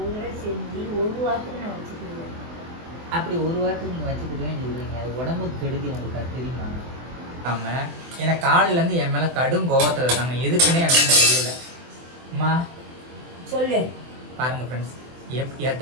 ஒரு தடவை செஞ்சு ஒரு வாரத்துக்கு நான் வச்சுக்கிடுவேன். அப்படி ஒரு வாரத்துக்கு நீங்கள் வச்சுக்கிடுவேன்னு சொல்கிறீங்க, அது உடம்புக்கு கெடுதி, உங்களுக்கு அது தெரியுமா? ஆமாம், ஏன்னா காலையிலேருந்து என் மேலே கடும் கோவத்தில் இருக்காங்க. எதுக்குன்னே எனக்கு தெரியல. அம்மா சொல்லு. பாருங்கள் ஃப்ரெண்ட்ஸ்,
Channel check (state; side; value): late; left; 24 ms